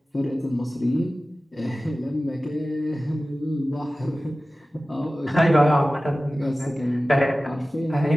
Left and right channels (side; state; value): both; normal; correlation 0.96